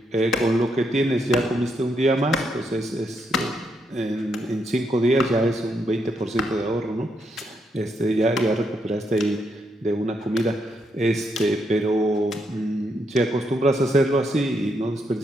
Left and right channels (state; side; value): normal; both; correlation 0.78